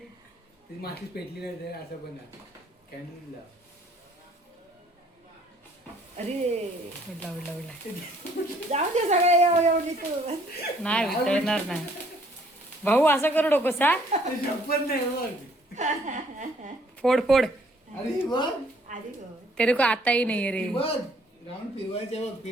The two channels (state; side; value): normal; both; correlation 0.62